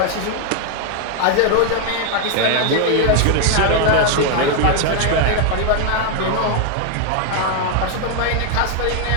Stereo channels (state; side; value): different; both; correlation 0.01